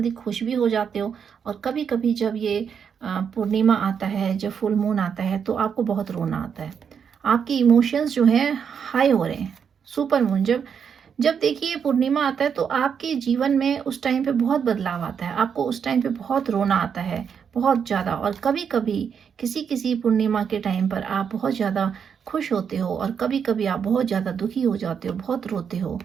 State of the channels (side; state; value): left; quieter; 7.2 dB